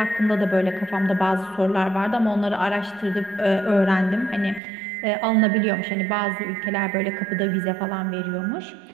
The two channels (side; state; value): left; drops out; at 4.6 s